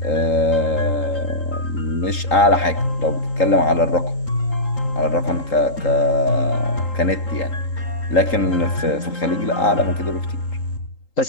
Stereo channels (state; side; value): late; right; 3.8 ms